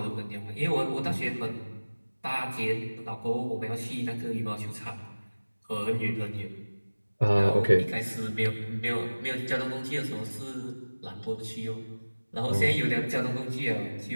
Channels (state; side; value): inverted; both; correlation -1.00